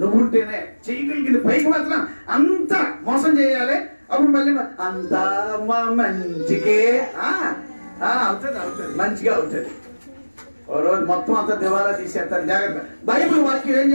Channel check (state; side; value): inverted; both; correlation -1.00